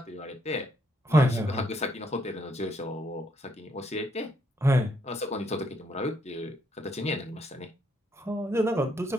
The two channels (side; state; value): both; normal; correlation 0.73